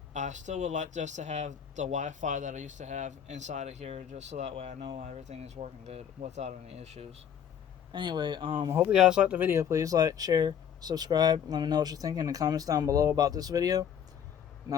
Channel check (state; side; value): quieter; right; 8.6 dB